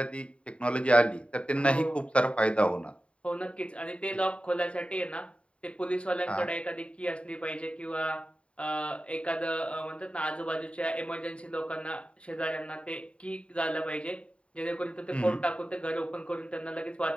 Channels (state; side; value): late; right; 0.060 ms